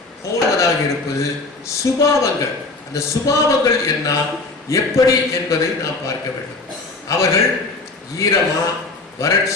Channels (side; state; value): right; quieter; 3.4 dB